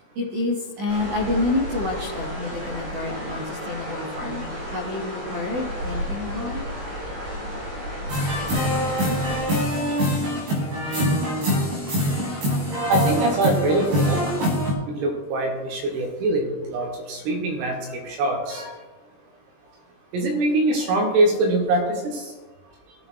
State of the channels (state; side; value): late; left; 20 ms